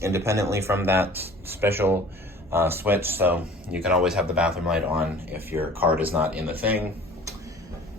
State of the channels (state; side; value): normal; both; correlation 0.46